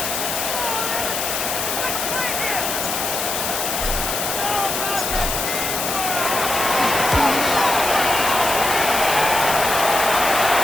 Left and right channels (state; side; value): noise; left; hiss, 2 dB below the sound